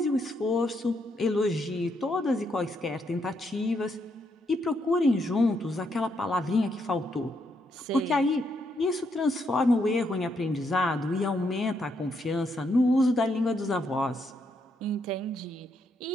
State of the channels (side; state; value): both; normal; correlation 0.77